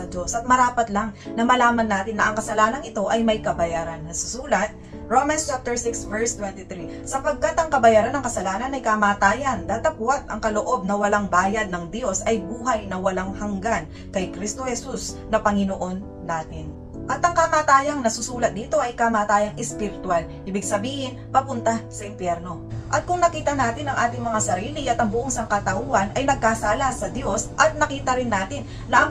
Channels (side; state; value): both; identical; correlation 1.00